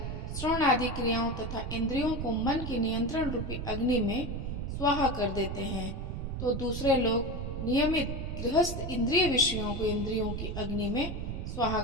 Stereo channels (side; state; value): right; noise; rumble, 4 dB below the sound